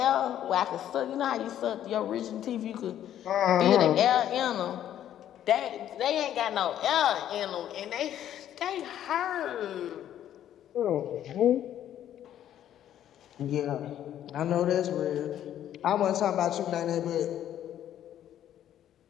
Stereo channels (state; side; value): quieter; right; 11.1 dB